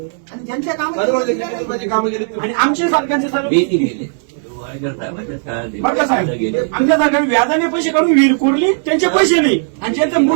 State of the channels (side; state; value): left; silent; 67 dB below the other